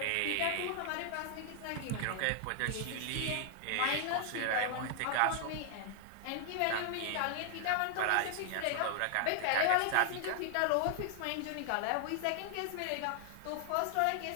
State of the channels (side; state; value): both; different; correlation 0.00